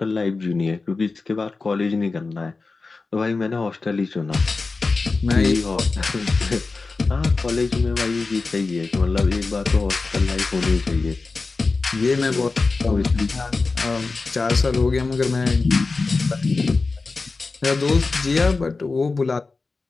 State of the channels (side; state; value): right; quieter; 3.9 dB